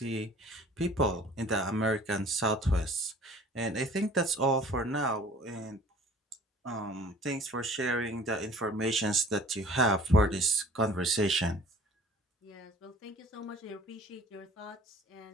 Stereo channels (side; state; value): both; normal; correlation 0.48